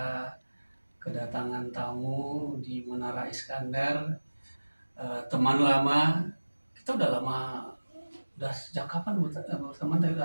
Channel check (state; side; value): inverted; both; correlation -1.00